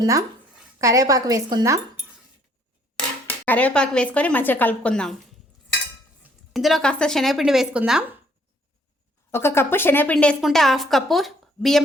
కరివేపాకు వేసుకుందాం. కరివేపాకు వేసుకొని మంచిగా కలుపుకుందాం. ఇందులో కాస్త శనగపిండి వేసుకుందాం. 1 కప్పు శనగపిండి వేసుకుంటే 1/2 కప్పు బియ్యం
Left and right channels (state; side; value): normal; both; correlation 0.64